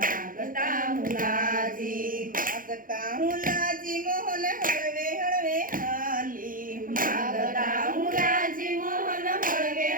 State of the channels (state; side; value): late; left; 0.40 ms